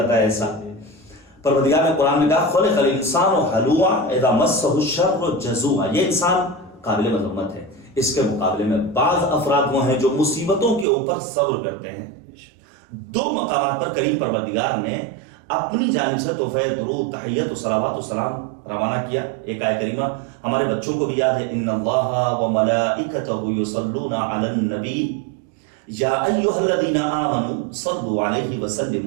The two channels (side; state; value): left; drops out; at 10.9 s